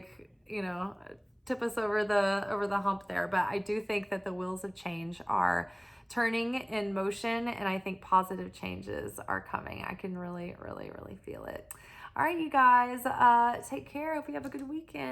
tip us over the hump there? But I do think that the wheels of change are turning in motion, and I think positive changes are coming. I can really, really, really feel it. All right, you guys, take care. Hope you have a good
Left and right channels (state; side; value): identical; both; correlation 1.00